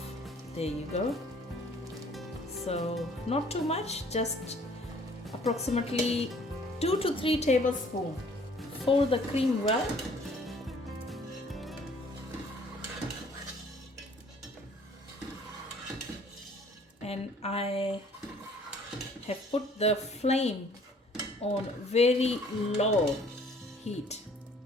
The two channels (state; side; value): normal; both; correlation 0.56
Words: There you go. So not too much, just approximately 2 to 3 tablespoons. Fold the cream well. And I have put the flame on very low heat.